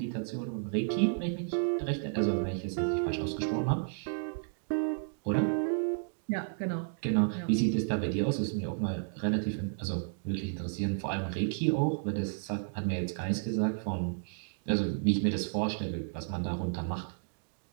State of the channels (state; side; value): silent; left; digital silence